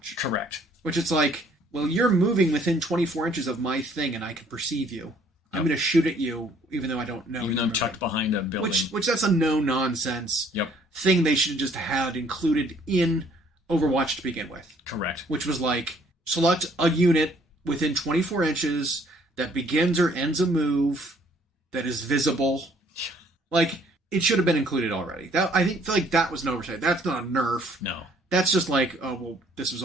Correct. Which it's like, well, you're moving within 24 inches of my thing, and I can perceive you. I'm going to shoot at you, even though I don't know. Even though I'm tucked behind a building. Which that's a no-nonsense thing they should have just had included in Overwatch to begin with. Correct. Which was like, select a unit within 24 inches that begins or ends a move that is visible. Like, it should have been included already. I feel like that was an oversight. That's not a nerf. No. That's just like, oh, well, this was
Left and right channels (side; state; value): both; normal; correlation 0.61